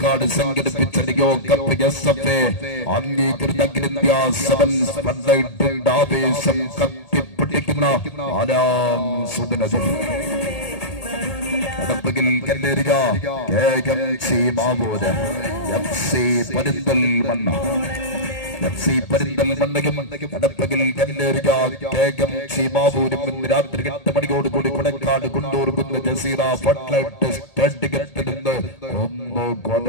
സംഘടിപ്പിച്ച Leo cup SF അംഗീകൃത അഖിലേന്ത്യാ സെവൻസ് പന്തയത്തിന്റെ ആവേശം കത്തിപ്പിടിക്കുന്ന Aram സുദിനത്തിൽ കടപ്പകിൽ കല്ലേറിയ KMC Mavoor FC Perinthalmanna പെരിന്തൽമണ്ണയും കടപ്പകിൽ കല്ലേറിയ KMC മാവൂരും ഇന്ന് രാത്രി 8 മണിയോടുകൂടി കൊടക്കാട് കൊണ്ടൂർക്കുന്ന ജസീറ ഫുട്ലൈറ്റ് സ്റ്റേഡിയത്തിൽ നിന്ന് ഒന്ന്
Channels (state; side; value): late; right; 1.8 ms